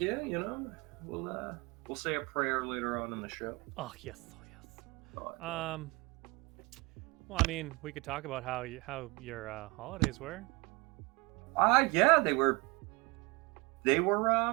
We'll say a prayer later on in the show. Oh, yes. Well, I mean, we could talk about how your holidays were. Yeah, they were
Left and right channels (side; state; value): left; quieter; 26.2 dB